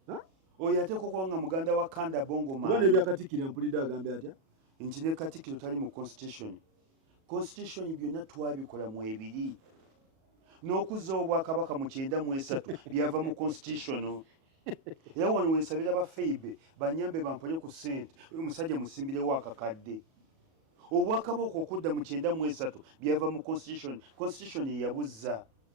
Oyo ateekwa okuba nga muganda wa Kanda Bongo Maani. Kuba ne byakatikkira mpulidde agambe atya? Nti ne Katikkiro tali mu constitution. Constitution byonna twabikola mu ebiri. N'okuzzawo Obwakabaka mu 93 byava mu constitution. Era wano wensabira ba Feibe banyambe bampole ku ssente. Oyo musajja musimbirewo akakadde. Obwakabaka okudda mu 93 byava mu constitution. Constitution yeyabuzza.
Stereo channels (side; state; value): left; late; 37 ms